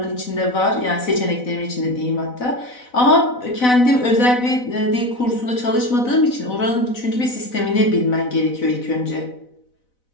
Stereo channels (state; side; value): late; right; 4.0 ms